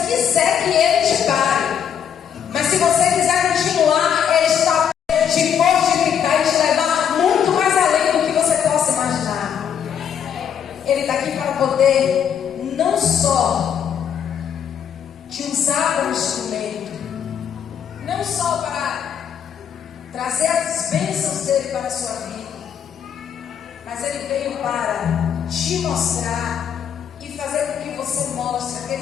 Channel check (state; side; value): quieter; right; 8.4 dB